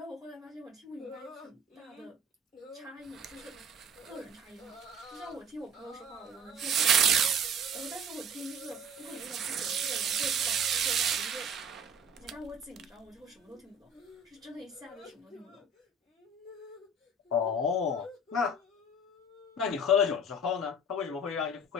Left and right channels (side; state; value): both; normal; correlation 0.46